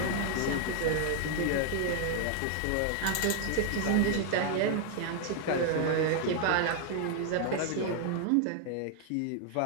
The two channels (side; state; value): both; different; correlation 0.00